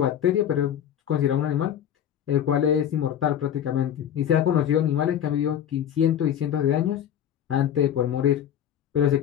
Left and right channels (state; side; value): quieter; right; 9.8 dB